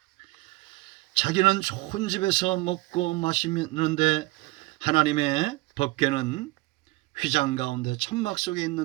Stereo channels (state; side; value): quieter; left; 21.6 dB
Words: 자기는 좋은 집에서 먹고 마시는데 하나님의 법궤는 휘장 가운데 천막 속에